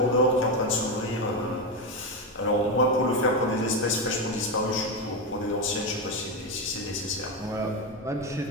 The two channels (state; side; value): normal; both; correlation 0.12